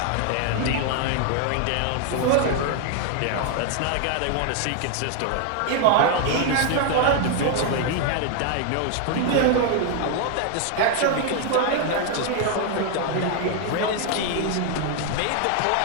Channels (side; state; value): both; different; correlation 0.00